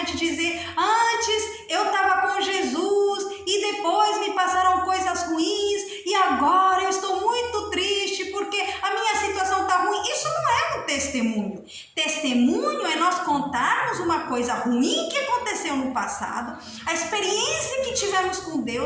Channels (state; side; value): identical; both; correlation 1.00